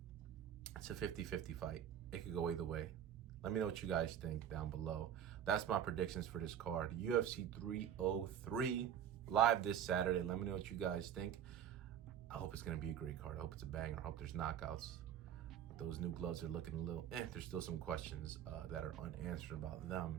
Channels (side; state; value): left; quieter; 9.7 dB